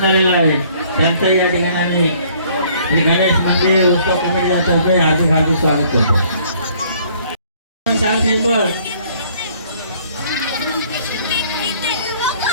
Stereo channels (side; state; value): both; inverted; correlation -0.59